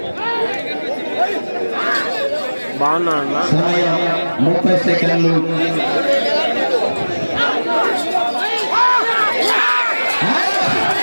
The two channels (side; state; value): both; inverted; correlation -1.00